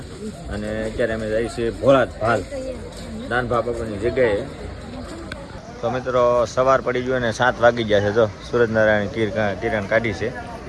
અને અત્યારે અમે જઈએ છીએ ભોળાજ ભાલ દાનભા બાપુની જગ્યાએ. તો મિત્રો સવાર પડી ગયો અને 7 વાગી ગયા છે. જો સૂરજનારાયણ કિરણ કાઢી છે,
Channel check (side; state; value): both; identical; correlation 1.00